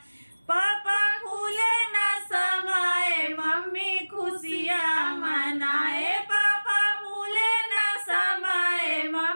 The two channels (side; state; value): both; inverted; correlation -1.00